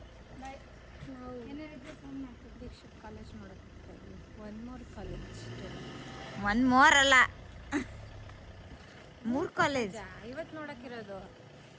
ದೀಕ್ಷಿತ್ ಕಾಲೇಜ್ ನೋಡೋಕ್ಕೆ one more college. One more ಅಲ್ಲ, 3 ಕಾಲೇಜ್ ಇವತ್ತು ನೋಡೋಕ್ಕಿರೋದು.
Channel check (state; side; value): identical; both; correlation 1.00